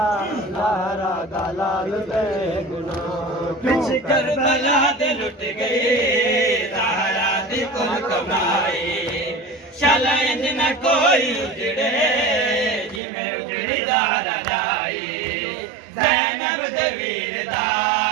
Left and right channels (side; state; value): left; drops out; at 13.0 s